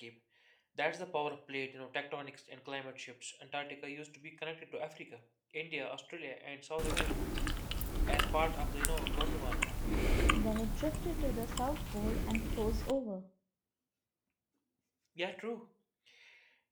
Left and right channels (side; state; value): both; identical; correlation 1.00